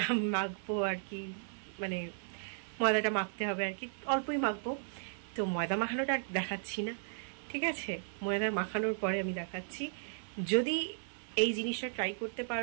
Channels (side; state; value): left; silent; 54 dB below the other